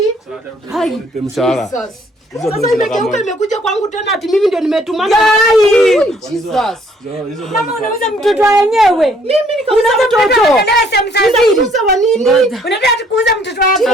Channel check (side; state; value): both; normal; correlation 0.63